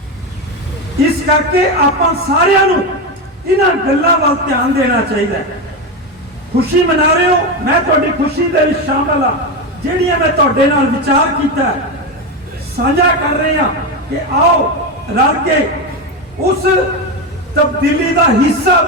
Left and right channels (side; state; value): both; normal; correlation 0.14